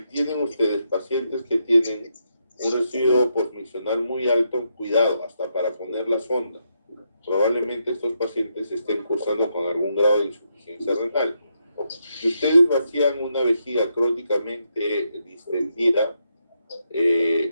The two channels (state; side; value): inverted; both; correlation -0.80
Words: tienen ustedes pacientes que tienen un residuo postmisional muy alto, cuidado, hasta para poner la sonda. Probablemente estos pacientes estén cursando con algún grado de insuficiencia renal. Si ustedes vacían una vejiga crónicamente distendida,